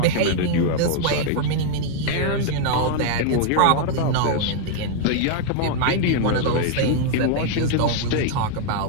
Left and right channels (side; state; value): both; different; correlation 0.00